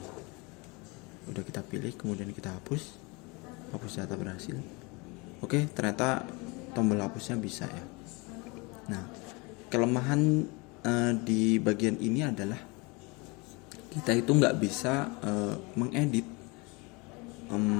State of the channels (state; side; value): quieter; right; 27.5 dB